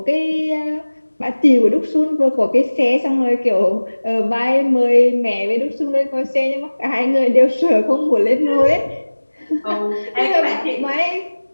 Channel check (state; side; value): inverted; both; correlation -1.00